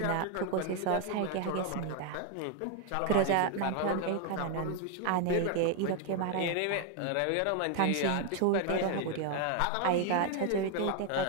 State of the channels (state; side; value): different; both; correlation 0.01